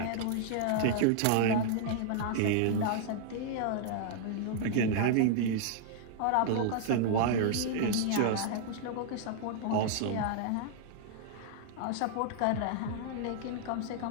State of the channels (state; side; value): different; both; correlation 0.00